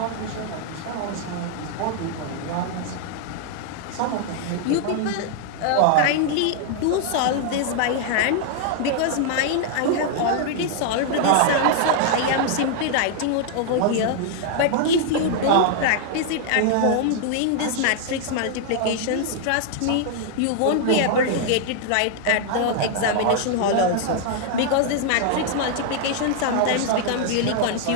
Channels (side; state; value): both; different; correlation 0.00